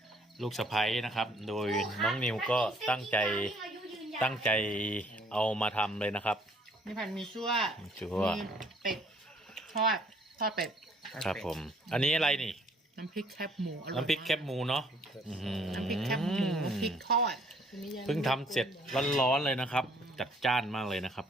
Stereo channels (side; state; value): both; normal; correlation 0.61